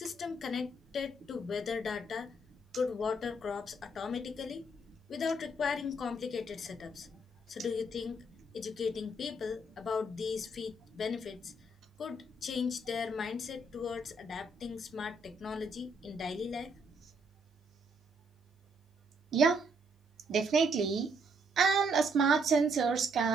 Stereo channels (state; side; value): normal; both; correlation 0.71